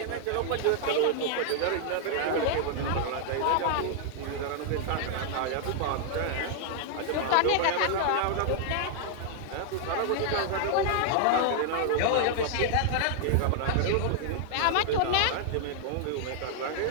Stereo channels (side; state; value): both; different; correlation 0.00